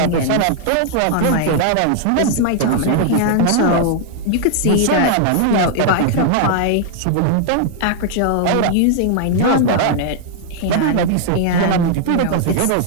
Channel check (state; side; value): different; both; correlation -0.01